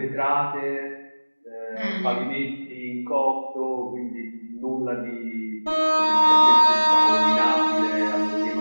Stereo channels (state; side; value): inverted; both; correlation -1.00